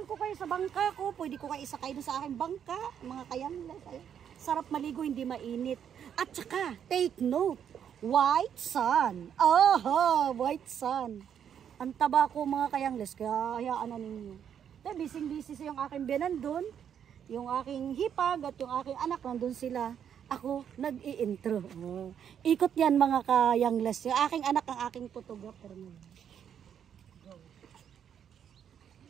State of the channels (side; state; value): left; quieter; 8.6 dB